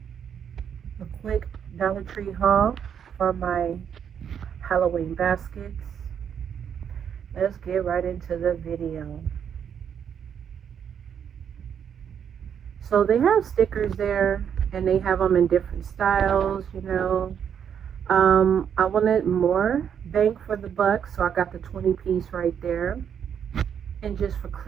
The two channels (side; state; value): left; quieter; 8.2 dB